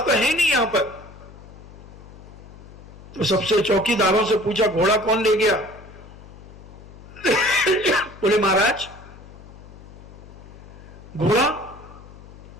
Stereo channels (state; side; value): noise; left; hum, 18 dB below the sound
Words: है नहीं यहां पर। तो सबसे चौकीदारों से पूछा घोड़ा कौन ले गया? बोले महाराज घोड़ा